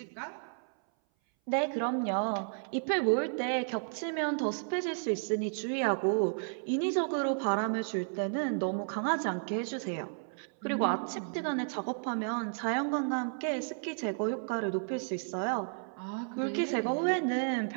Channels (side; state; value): left; silent; 56 dB below the other